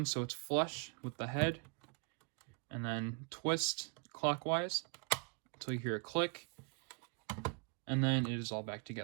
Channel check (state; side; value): quieter; left; 35.4 dB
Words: so it's flush with the head. And then twist clockwise until you hear a click. And then it is all back